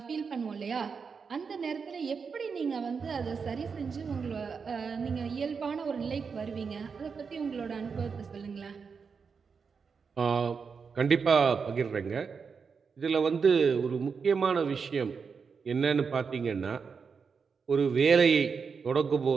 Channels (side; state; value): left; quieter; 5.6 dB